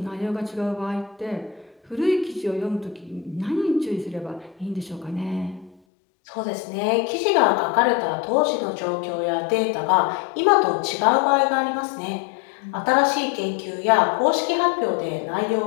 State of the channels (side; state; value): right; drops out; at 5.8 s